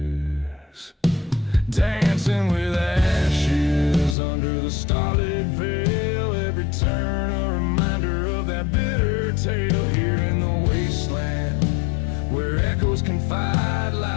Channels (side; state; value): right; drops out; at 4.2 s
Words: Dancing with ashes under the starlit veil. Every turn a reminder of that bitter tale. Here in the wasteland where echoes confide,